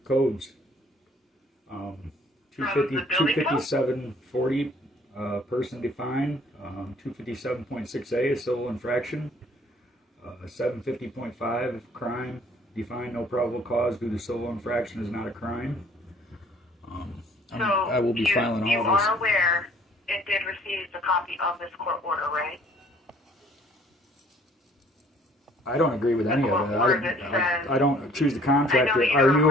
codes. 25740, person defined. 257.6a, a civil infraction. 750.5, crime defined, no probable cause due to civil infraction is not a crime. I will be filing all this. You are aware it did receive a copy of this court order, right? I don't agree with any of it. I don't choose the contractor.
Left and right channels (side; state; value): both; normal; correlation 0.57